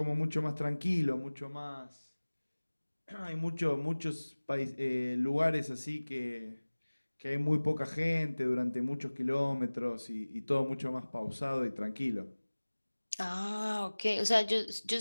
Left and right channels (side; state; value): both; inverted; correlation -1.00